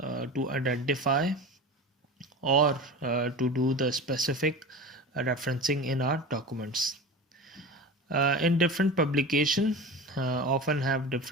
identify or to do the specific referencing in our documents. In different publication often have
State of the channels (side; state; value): both; normal; correlation 0.31